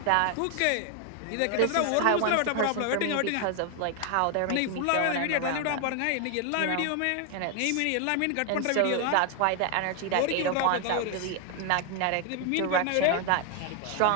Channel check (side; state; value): both; different; correlation 0.00